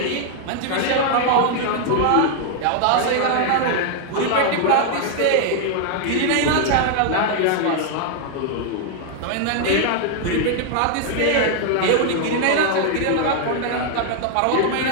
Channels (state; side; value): different; both; correlation 0.00